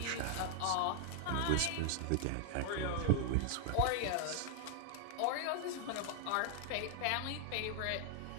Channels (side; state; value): both; different; correlation 0.00